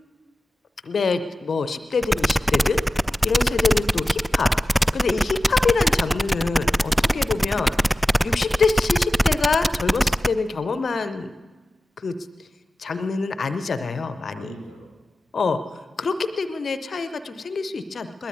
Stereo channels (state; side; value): normal; both; correlation 0.94